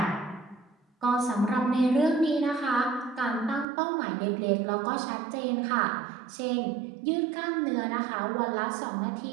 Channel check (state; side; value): drops out; left; at 3.7 s